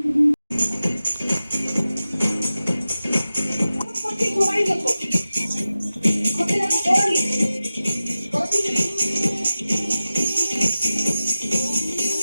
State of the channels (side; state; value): both; inverted; correlation -0.94